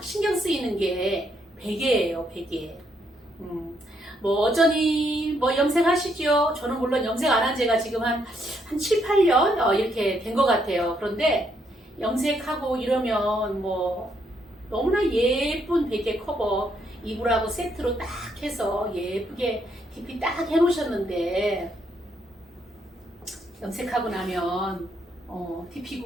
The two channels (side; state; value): both; normal; correlation 0.74